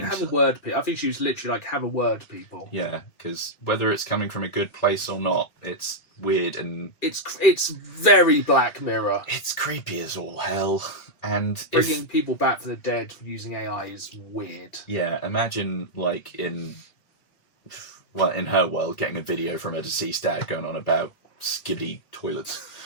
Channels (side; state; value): right; late; 2.4 ms